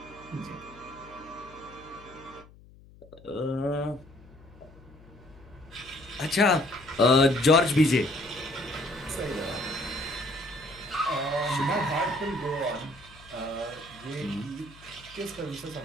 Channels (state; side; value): noise; left; hum, 23 dB below the sound